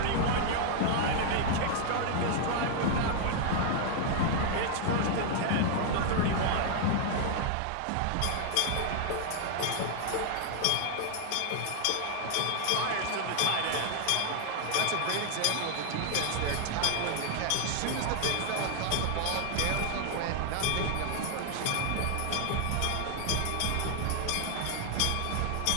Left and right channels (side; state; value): both; different; correlation 0.00